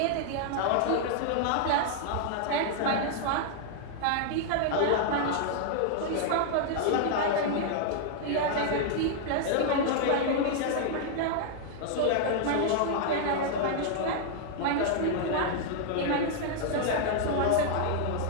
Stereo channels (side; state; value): both; different; correlation -0.01